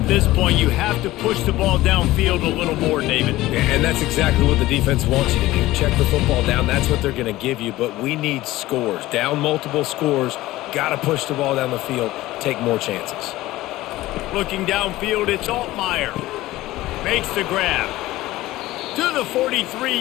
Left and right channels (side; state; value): right; quieter; 17.1 dB